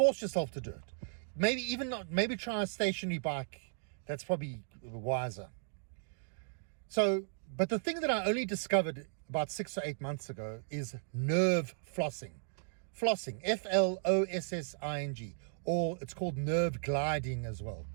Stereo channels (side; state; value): left; silent; digital silence